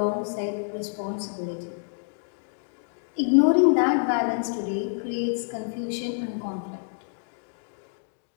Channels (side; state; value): right; silent; digital silence